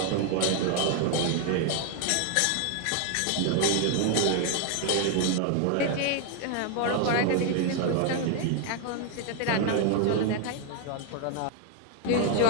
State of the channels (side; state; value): both; different; correlation 0.00